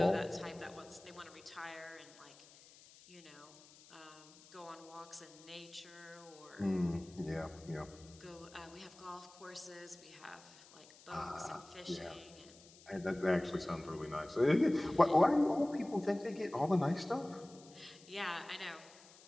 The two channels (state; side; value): noise; left; hiss, 22 dB below the sound